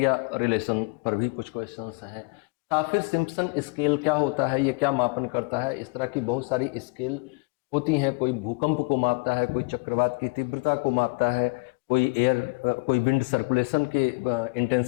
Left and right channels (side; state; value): right; quieter; 32.2 dB